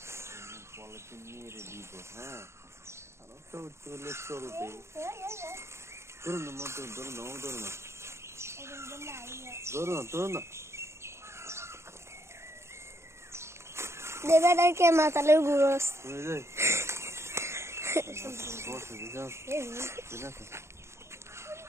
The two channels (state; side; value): late; left; 0.13 ms